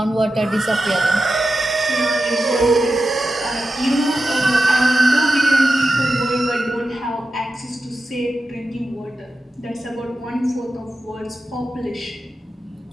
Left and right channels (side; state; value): both; normal; correlation 0.91